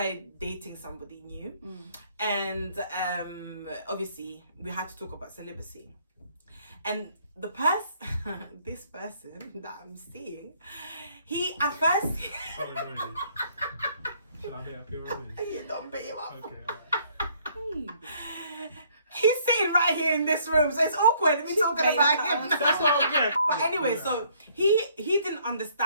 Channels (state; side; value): inverted; both; correlation -0.63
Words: dating somebody new, and obviously we had to talk about celibacy. And this person that I'm seeing, he at first. Should I beat up your rubbish? You don't beat him up. Okay, alright. He's sitting right here in this room, so it's awkward me talking about him. That's what I'm getting. But anyway, so he didn't